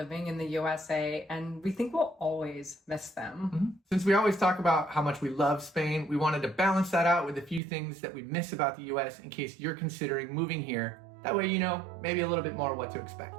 in the USA, and we think we'll always miss them. Since we always talk about how much we love Spain, we wanted to balance that out with a few things that we miss about the US in case you're considering moving here. That way you know maybe a little bit more what to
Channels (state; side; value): drops out; left; at 7.6 s